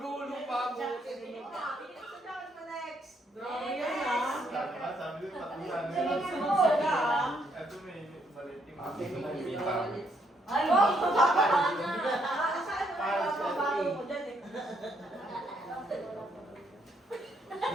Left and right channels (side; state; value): both; normal; correlation 0.73